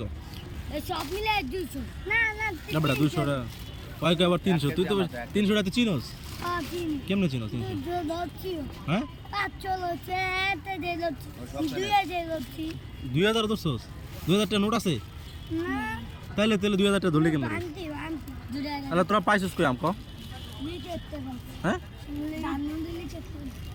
সব মিলে 200 না বেটা 200 টাকা কয়েক আবার 300 তুই তো 300 টাকা চিনোস কেমনে চিনোস 300 হ্যাঁ 2000 ধরছস 2000 টাকা নোট আছে তাহলে 2000 টাকা ধরলে কেমনে তাহলে তোরা পাইছিস কই আম ক হ্যাঁ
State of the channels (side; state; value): both; identical; correlation 1.00